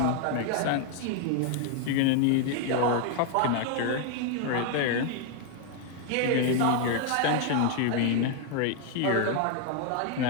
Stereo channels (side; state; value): both; different; correlation 0.00